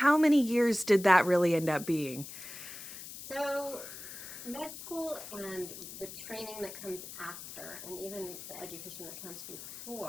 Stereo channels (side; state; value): left; noise; hiss, 12 dB below the sound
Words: many years did that really end up being? So med school and the training that comes after, and even the education that comes